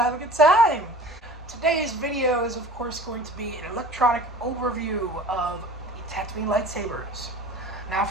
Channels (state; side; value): normal; both; correlation 0.42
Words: have a good time. Today's video is, of course, going to be an electronic overview of the Tatooinelightsabers. Now,